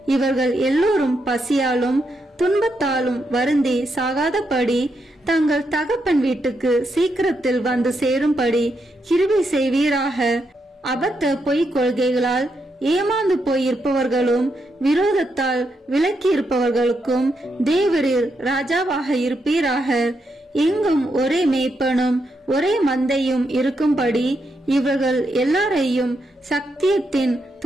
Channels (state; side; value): normal; both; correlation 0.81